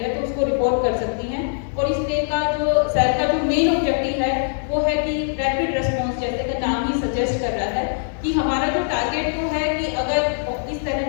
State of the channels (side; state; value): right; silent; digital silence